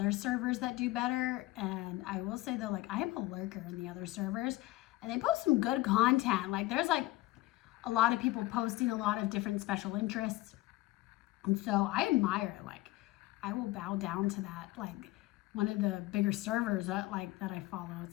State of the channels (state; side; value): quieter; right; 18.4 dB